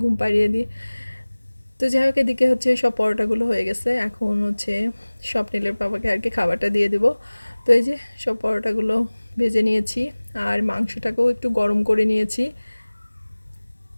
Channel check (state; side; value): inverted; both; correlation -1.00